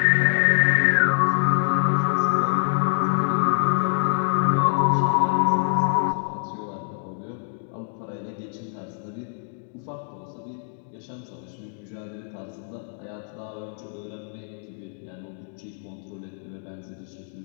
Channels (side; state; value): right; silent; digital silence